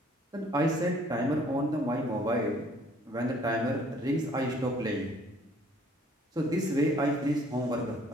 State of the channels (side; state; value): both; normal; correlation 0.59